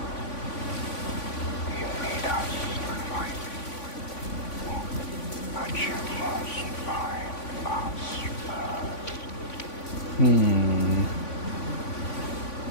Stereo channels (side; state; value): right; late; 3.5 ms